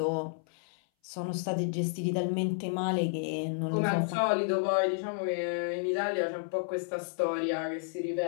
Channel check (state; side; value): silent; right; 57 dB below the other